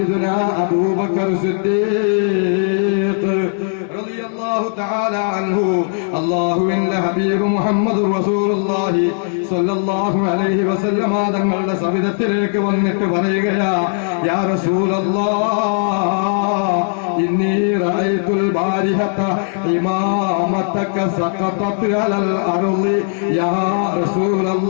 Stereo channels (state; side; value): silent; right; 68 dB below the other